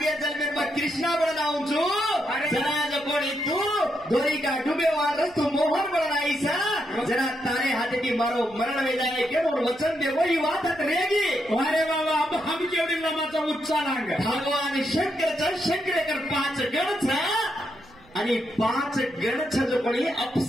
जन्मेर मा कृष्णा बळ लावूचो जरा कोणी तू दोरी का डुबे वार तू मोहन बळ नाहीसा जरा तारे हाते मारो मरण वेदाने केवळ वचन दे वही वाटत रेगी अरे बाबा अब हम केवढी लमाचा उच्चारांग भगवान शंकरेकर 5 गणच आणि 5 गणच जो कोणी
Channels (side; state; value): right; noise; rumble, 26 dB below the sound